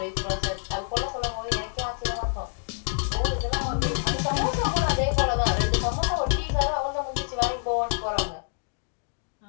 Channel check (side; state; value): right; silent; 60 dB below the other